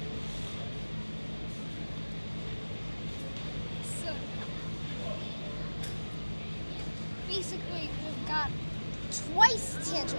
So basically we've got twice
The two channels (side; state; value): both; inverted; correlation -1.00